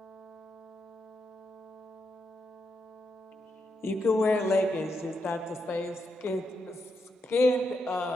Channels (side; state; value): both; normal; correlation 0.83